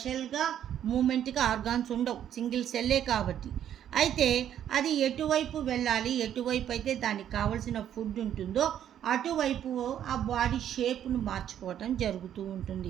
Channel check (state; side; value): quieter; left; 10.3 dB